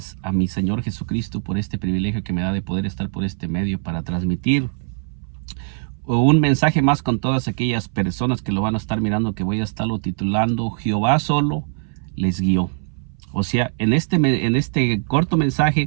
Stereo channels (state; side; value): silent; left; 61 dB below the other